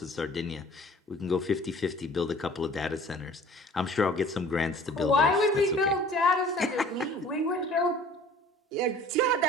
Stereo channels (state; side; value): normal; both; correlation 0.48